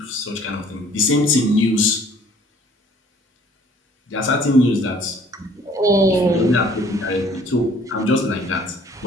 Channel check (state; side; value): normal; both; correlation 0.56